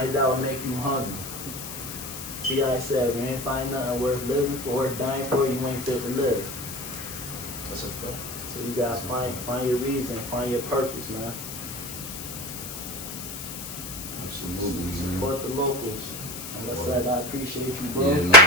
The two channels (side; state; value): left; noise; hiss, 9 dB below the sound